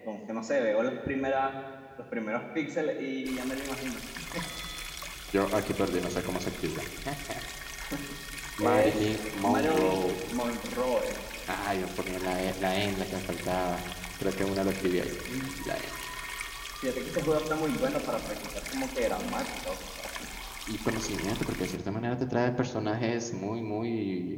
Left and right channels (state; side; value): identical; both; correlation 1.00